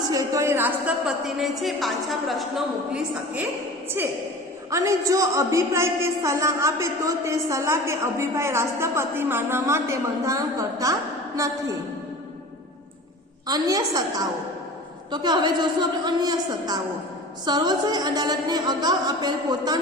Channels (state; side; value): normal; both; correlation 0.38